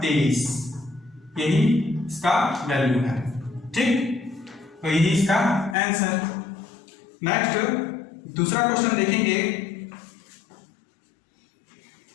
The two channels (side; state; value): right; drops out; at 5.8 s